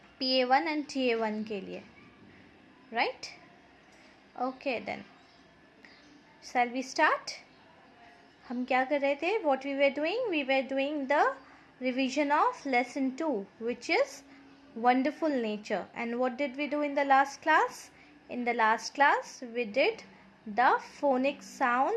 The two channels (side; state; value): both; identical; correlation 1.00